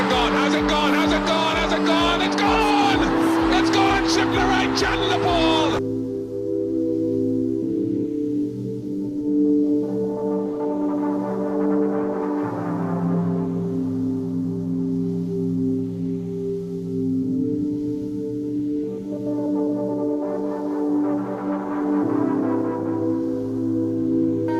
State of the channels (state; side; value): identical; both; correlation 1.00